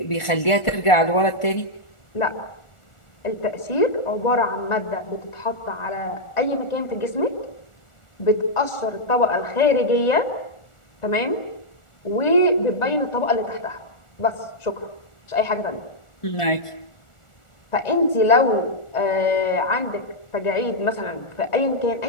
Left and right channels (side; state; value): right; late; 1.4 ms